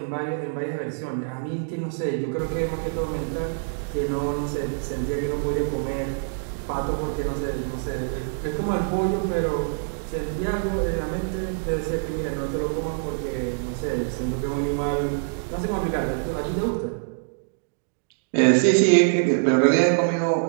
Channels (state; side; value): silent; left; digital silence